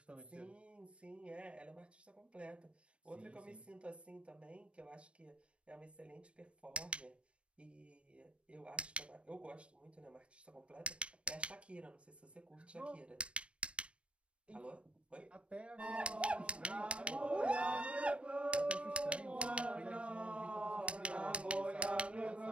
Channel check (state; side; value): late; left; 0.060 ms